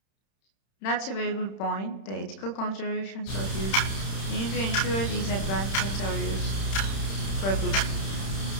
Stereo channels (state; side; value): late; right; 31 ms